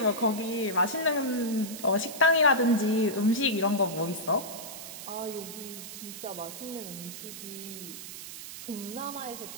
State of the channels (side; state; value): right; noise; hiss, 11 dB below the sound